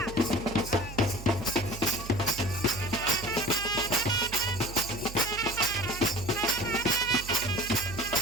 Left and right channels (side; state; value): right; noise; hum, 12 dB below the sound